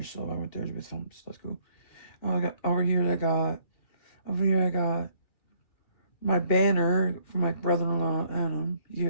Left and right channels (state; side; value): late; right; 2.0 ms